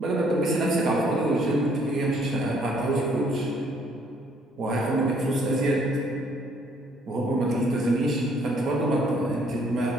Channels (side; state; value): both; normal; correlation 0.65